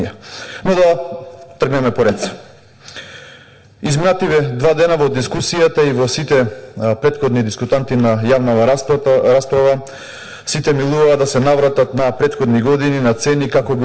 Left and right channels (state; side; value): identical; both; correlation 1.00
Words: Но да тргнеме поред. Изминативе 2 дена во дискусијата и во сите претходни дискутанти на јавнава расправа, сите милуваа да се навратат на претходни години, на цени, како